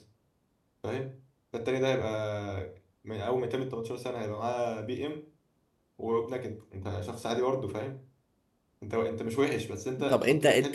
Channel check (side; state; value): both; identical; correlation 1.00